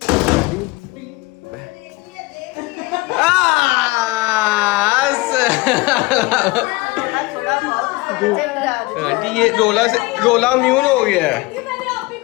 आंटी ये रोला म्यून हो गया है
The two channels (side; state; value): right; quieter; 22.6 dB